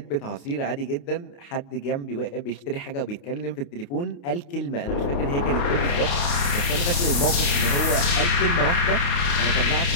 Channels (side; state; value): right; late; 28 ms